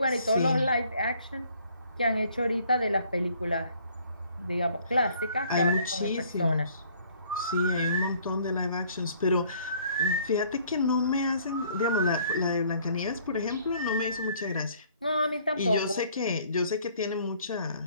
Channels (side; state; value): both; inverted; correlation -0.60